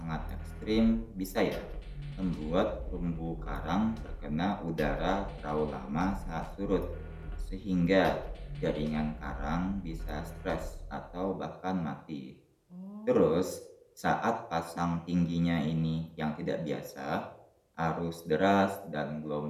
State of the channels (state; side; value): identical; both; correlation 1.00